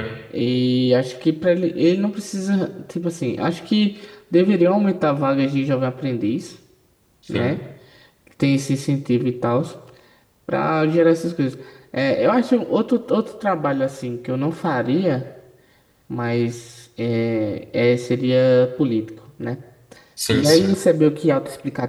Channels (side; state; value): both; identical; correlation 1.00